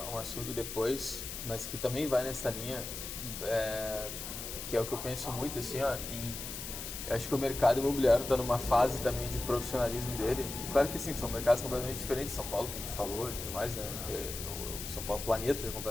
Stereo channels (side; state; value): left; noise; hiss, 7 dB below the sound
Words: assunto depois, mas que também vai nessa linha, que é o que eu penso muito, assim, ó, eu acho que o mercado imobiliário está numa fase também de profissionalismo dele. Claro que sim, são mercados completamente diferentes. São Paulo, que a gente falou e tudo mais, né? São Paulo, planeta é